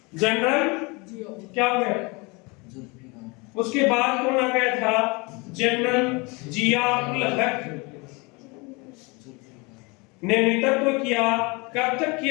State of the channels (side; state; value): right; quieter; 27.7 dB